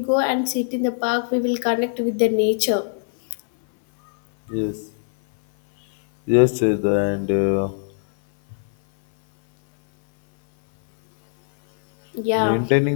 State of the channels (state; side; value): silent; right; 60 dB below the other